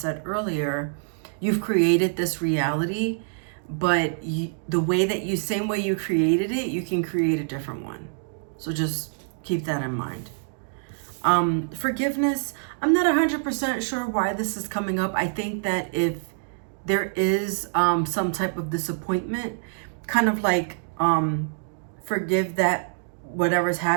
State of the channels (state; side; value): silent; left; digital silence